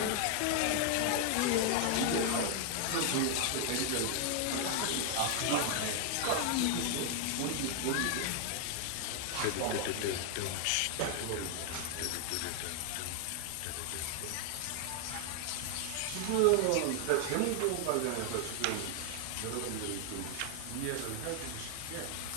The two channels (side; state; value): both; different; correlation 0.00